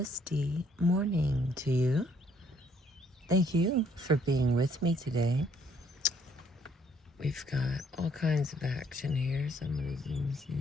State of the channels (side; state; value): both; normal; correlation 0.66